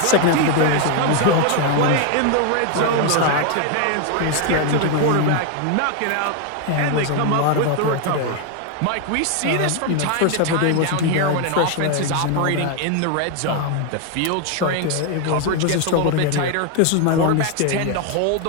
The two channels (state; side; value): different; both; correlation 0.01